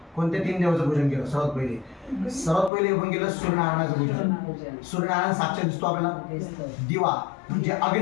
कोणत्या 3 देवाचं पूजन केलं? सर्वात पहिले आपण केलं सूर्यनारायणाचं पूजन. सूर्यनारायण साक्षात दिसतो आपल्याला. दिवा म्हणजे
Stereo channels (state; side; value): drops out; right; at 2.7 s